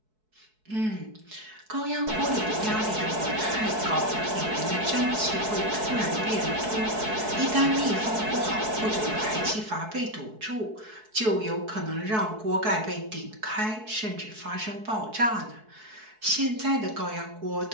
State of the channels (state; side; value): late; left; 4.6 ms